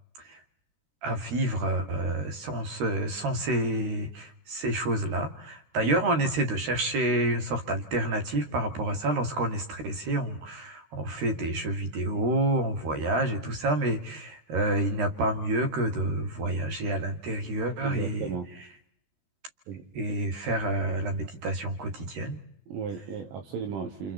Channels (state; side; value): late; left; 13 ms